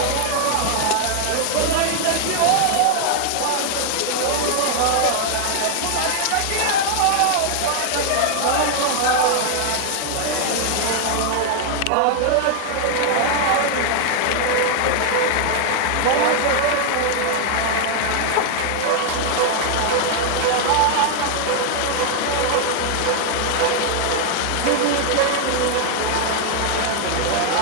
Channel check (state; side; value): different; both; correlation 0.00